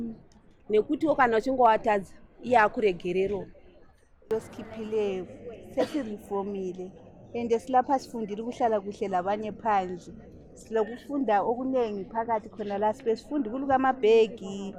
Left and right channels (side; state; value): both; identical; correlation 1.00